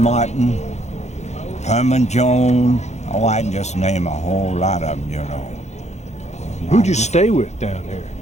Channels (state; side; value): late; right; 0.33 ms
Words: Herman Jones. Oh, I can just name a whole lot of them, you know. Who'd you stay with down there?